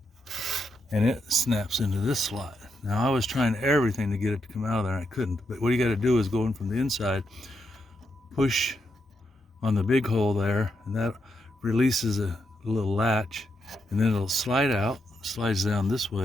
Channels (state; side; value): normal; both; correlation 0.82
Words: and it snaps into this slot. Now I was trying everything to get it to come out of there and I couldn't, but what you got to do is go in from the inside, push on the big hole there, and that releases a little latch, and then it'll slide out, slides down this